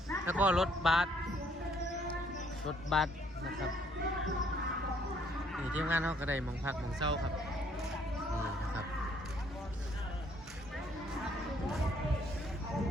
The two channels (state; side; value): normal; both; correlation 0.65